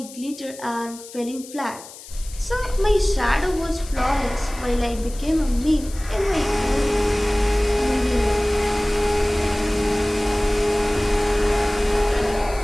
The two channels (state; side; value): noise; left; hiss, 17 dB below the sound